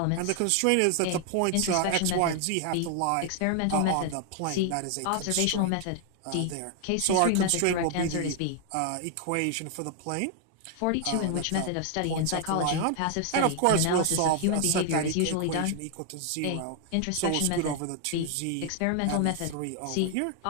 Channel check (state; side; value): different; both; correlation 0.00